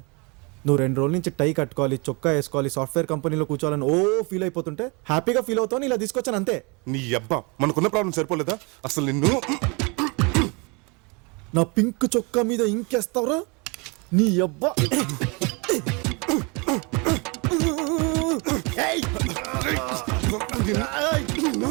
నువ్వు 2 రోజుల నుంచి టై కట్టుకోవాలి, చొక్కా వేసుకోవాలి, సాఫ్ట్వేర్ కంపెనీలో కూర్చోవాలని ఫీల్ అయిపోతుంటే హ్యాపీగా ఫీల్ అవుతావు ఇలా తీసుకొచ్చాను అంతే. నీ అబ్బా, మనకున్న ప్రాబ్లం సరిపోలేదా? అసలు నిన్ను నా పింక్ చొక్కా మీద ఇంకేస్తావురా నీ అబ్బా.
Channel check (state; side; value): quieter; left; 30.1 dB